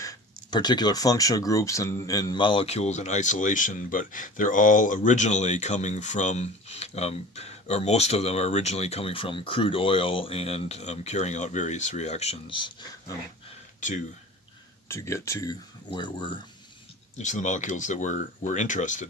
particular functional groups and molecules in isolation, but they're all originally coming from, or most of them are originally coming from crude oil, and carrying out various reactions to get to where we're, to the molecules that we're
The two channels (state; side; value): normal; both; correlation 0.39